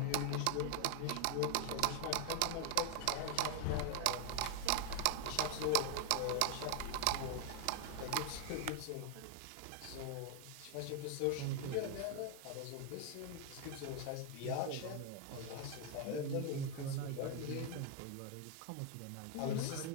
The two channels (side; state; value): both; different; correlation 0.01